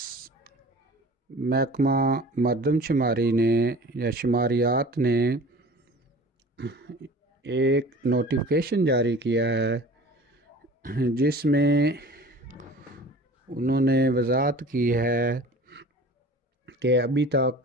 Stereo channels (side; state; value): both; normal; correlation 0.42